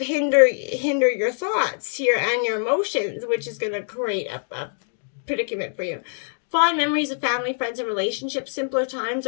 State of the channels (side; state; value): right; silent; digital silence